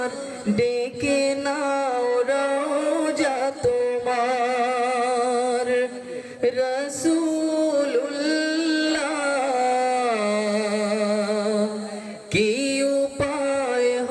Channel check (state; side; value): identical; both; correlation 1.00